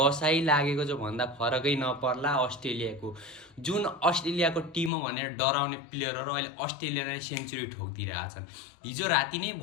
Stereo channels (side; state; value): right; drops out; at 4.9 s